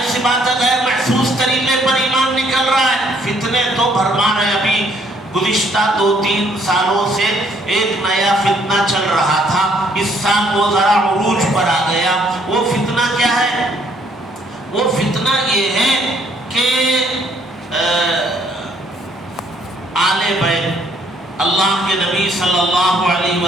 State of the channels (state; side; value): normal; both; correlation 0.65